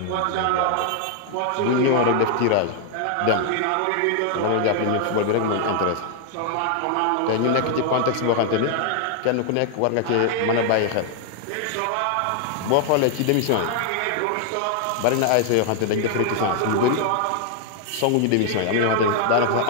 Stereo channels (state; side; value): different; both; correlation 0.00